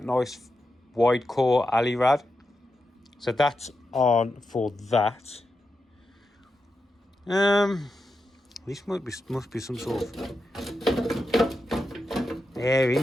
nice wide core alley rad. So that's on for that. This must be some sort of air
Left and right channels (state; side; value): normal; both; correlation 0.88